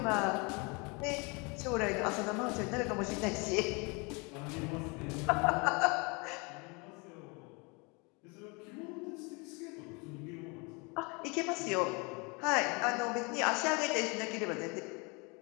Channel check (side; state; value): right; quieter; 29.8 dB